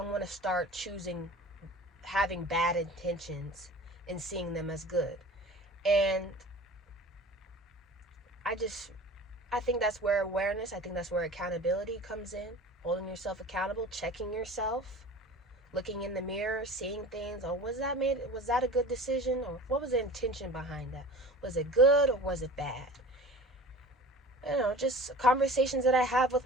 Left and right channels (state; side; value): normal; both; correlation 0.40